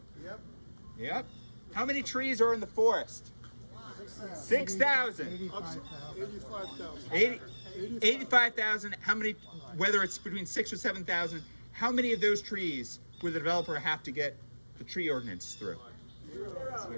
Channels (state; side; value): inverted; both; correlation -1.00